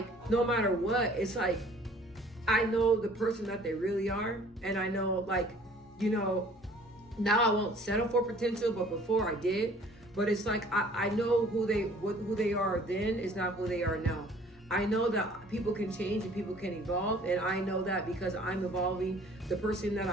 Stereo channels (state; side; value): normal; both; correlation 0.53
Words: no matter what, it's like, I know the person that they really are. And I know, like, now I won't settle for potential, but before I did. But it's like, I know who they are then is not who they are now. I know that people can change and people can evolve, and I know that because I'm evolving. The person that